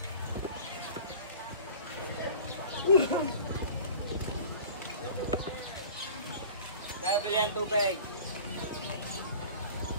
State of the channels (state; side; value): inverted; both; correlation -0.42